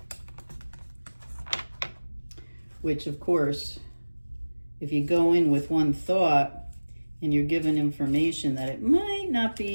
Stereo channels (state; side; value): inverted; both; correlation -1.00